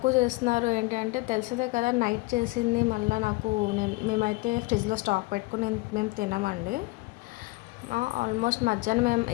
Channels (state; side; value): quieter; right; 22.5 dB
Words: చేస్తున్నారు ఏంటి అంటే, తెలిసిందే కదా నైట్ చేసింది మళ్ళీ మేమైతే ఫ్రిడ్జ్లో స్టాక్ పెట్టుకుని మేము తినమండి. ఆల్మోస్ట్ మధ్యాహ్నం మేము